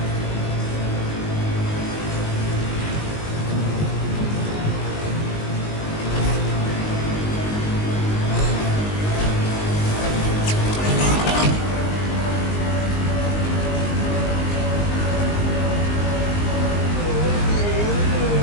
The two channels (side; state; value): right; late; 19 ms